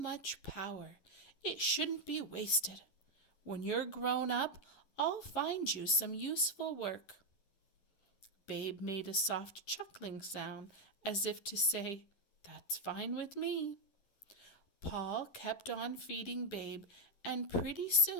power, it shouldn't be wasted. When you're grown up, I'll find you some useful work." Babe made a soft chuckling sound as if to say, "That's fine with me." Paul kept on feeding Babe, and pretty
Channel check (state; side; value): late; right; 10 ms